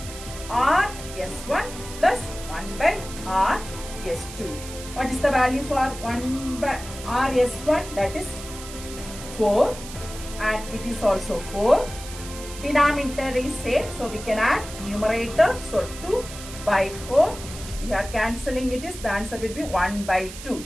Rs1 plus 1 by Rs2. What is the value for 1 by Rs1? That is 4 and it is also 4. Denominator is same, so we can add numerator. So 2 by 4. We are cancelling it, is the answer will be 1 by 2.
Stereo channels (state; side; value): noise; right; hiss, 13 dB below the sound